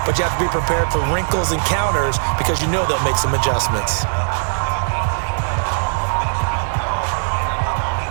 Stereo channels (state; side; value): silent; left; digital silence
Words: but you have to be prepared for wrinkles and counters because you know they'll make some adjustments.